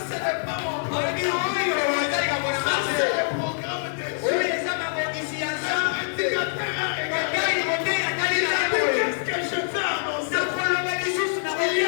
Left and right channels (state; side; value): silent; right; digital silence